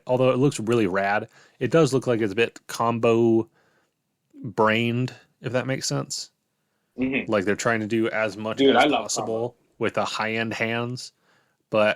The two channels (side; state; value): both; identical; correlation 1.00